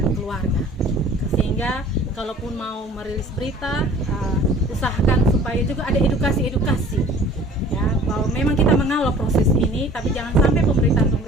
keluarga. Sehingga kalaupun mau merilis berita, usahakan supaya juga ada edukasi ya, bahwa memang kita mengawal proses ini, tapi jangan sampai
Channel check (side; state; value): both; normal; correlation 0.48